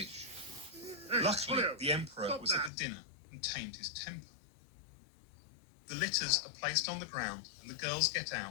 Luckily, the emperor was at the dinner and tamed his temper. The litters are placed on the ground and the girls get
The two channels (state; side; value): drops out; right; at 2.7 s